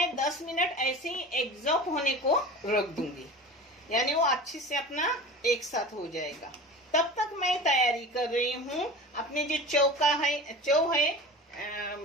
10 मिनट ऐसे ही एग्जॉस्ट होने को रख दूंगी, यानी वो अच्छे से अपना एक साथ हो जाएगा। तब तक मैं तैयारी कर रही हूँ अपने जो चौ है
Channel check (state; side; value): normal; both; correlation 0.35